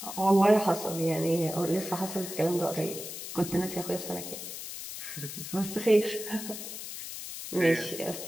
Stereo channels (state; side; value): noise; left; hiss, 9 dB below the sound